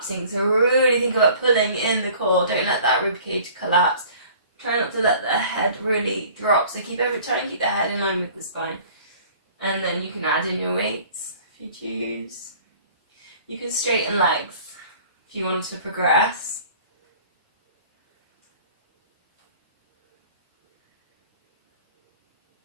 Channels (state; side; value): inverted; both; correlation -0.49